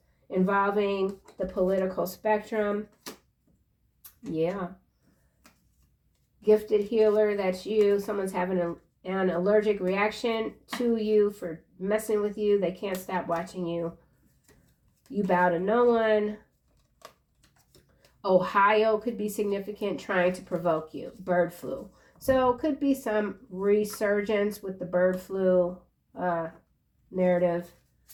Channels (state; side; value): identical; both; correlation 1.00